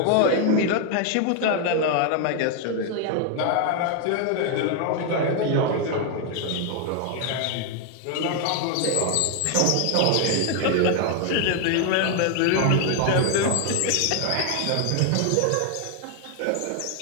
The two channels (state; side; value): different; both; correlation 0.01